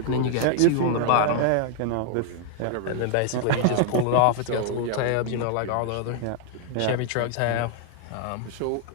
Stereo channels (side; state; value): both; different; correlation 0.00